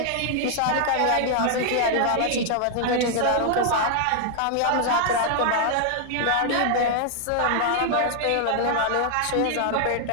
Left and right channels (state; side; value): different; both; correlation 0.00